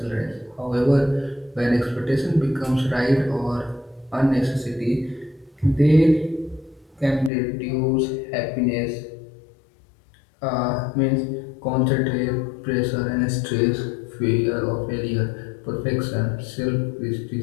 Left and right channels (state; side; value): drops out; right; at 7.3 s